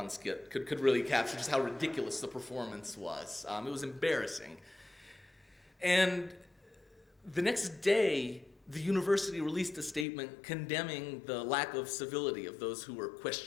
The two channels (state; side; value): drops out; right; at 10.1 s